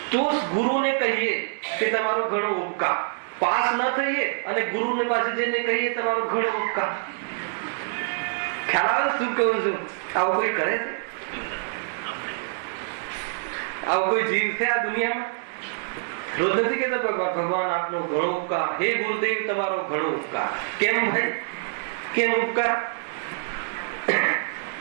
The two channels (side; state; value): left; silent; digital silence